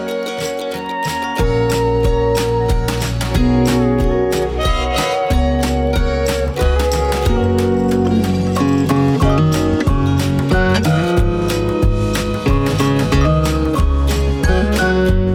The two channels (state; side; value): identical; both; correlation 1.00